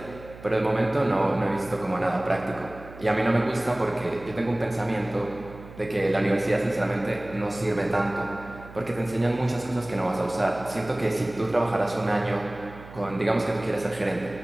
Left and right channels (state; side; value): noise; right; hum, 17 dB below the sound